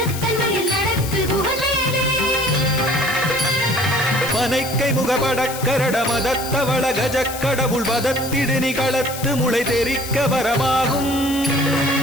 மயில் நடத்து குகவேலே. பனைக்கை முகபடக்கரட மதத்தவள கஜக்கடவுள் வதத்திடு நிகளத்து முளை தெரிக்க வரமாகும்.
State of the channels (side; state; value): left; noise; hiss, 10 dB below the sound